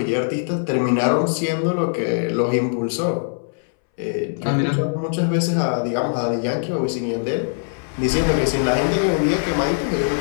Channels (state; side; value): silent; right; 64 dB below the other